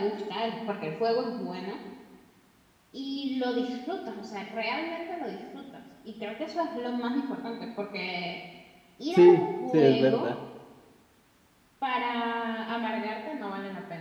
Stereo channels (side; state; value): both; identical; correlation 1.00